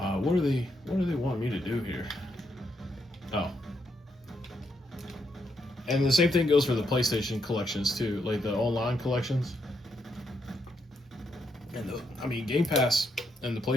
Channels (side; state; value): both; normal; correlation 0.78